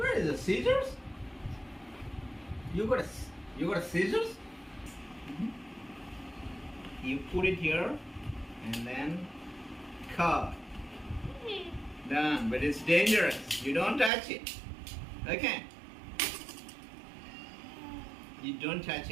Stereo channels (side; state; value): left; drops out; at 14.1 s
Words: is the scissors? You got a scissors? You put it here and then cut. Done. But it's dangerous. You don't touch it. Okay. You don't touch